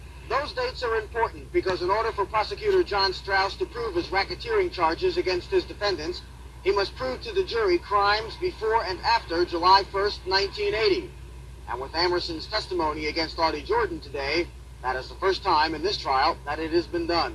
Those dates are important because in order for prosecutor John Strauss to prove his racketeering charges against his defendants, he must prove to the jury crimes before and after July 1st, 1980. And with Amerson's testimony against Audie Jordan today, that is the first time in this trial that it has been done.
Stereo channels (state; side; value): identical; both; correlation 1.00